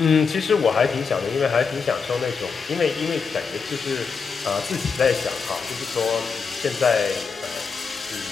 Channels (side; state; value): right; quieter; 5.4 dB